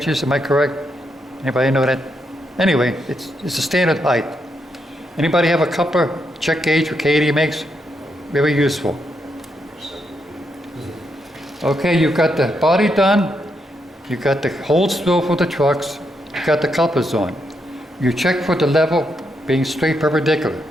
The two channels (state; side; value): normal; both; correlation 0.80